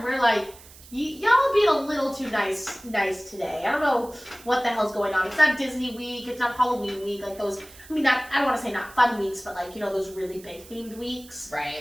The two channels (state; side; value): noise; right; hiss, 21 dB below the sound